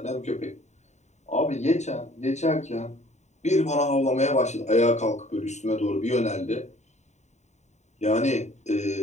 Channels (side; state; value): right; late; 0.34 ms